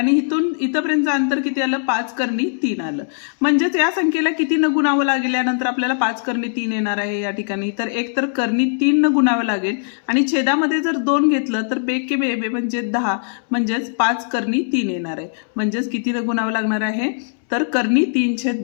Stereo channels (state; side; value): silent; right; 65 dB below the other